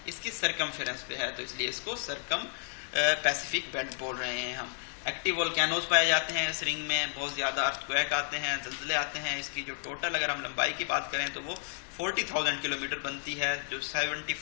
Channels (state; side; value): silent; right; 56 dB below the other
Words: इसकी सरकमफेरेंस पे है, तो इसलिए इसको सरकम पैसिफिक बेल्ट बोल रहे हैं हम। एक्टिव वोल्केनोज पाए जाते हैं इस रिंग में, बहुत ज़्यादा अर्थक्वेक आते हैं, ज़लज़ले आते हैं। इसकी जो टोटल अगर हम लंबाई की बात करें तो वो 40,000 किलोमीटर बनती है। जो